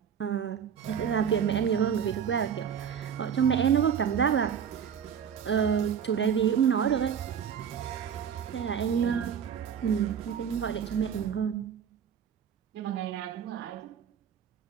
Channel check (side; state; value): left; quieter; 7.9 dB